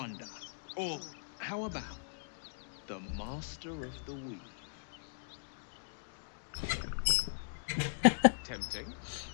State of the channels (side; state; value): right; silent; digital silence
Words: Or how about the Master of the Weave? Tempting.